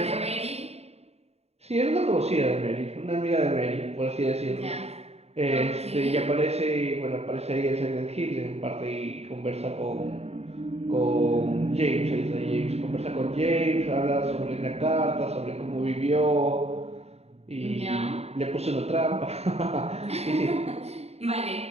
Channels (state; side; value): late; left; 0.30 ms